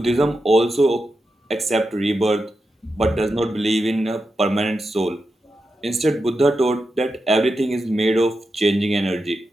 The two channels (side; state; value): both; normal; correlation 0.88